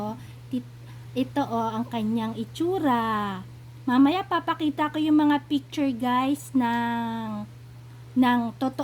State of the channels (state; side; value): identical; both; correlation 1.00